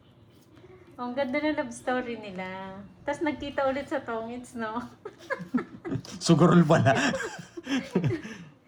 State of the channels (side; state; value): both; identical; correlation 1.00